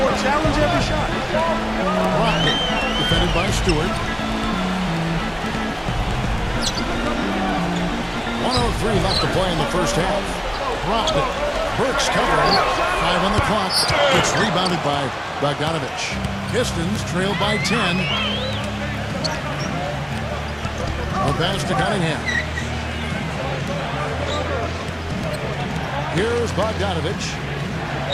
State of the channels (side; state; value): both; identical; correlation 1.00